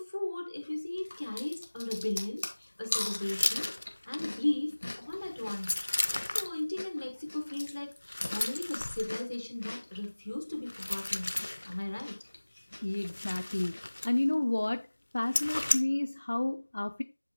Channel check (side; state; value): both; inverted; correlation -1.00